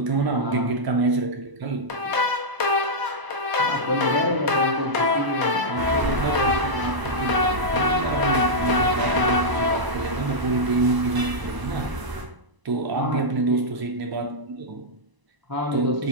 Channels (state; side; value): late; left; 1.0 ms